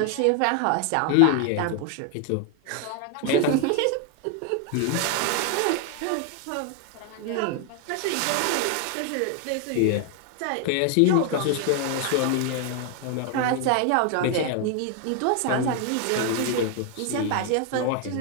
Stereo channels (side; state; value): both; different; correlation 0.00